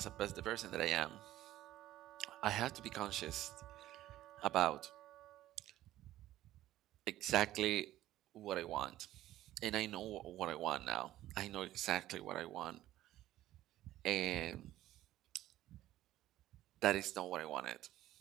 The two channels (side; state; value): left; quieter; 14.4 dB